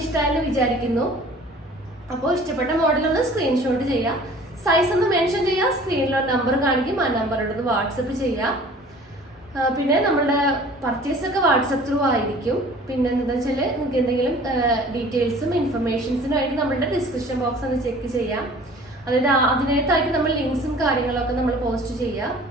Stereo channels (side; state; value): both; normal; correlation 0.48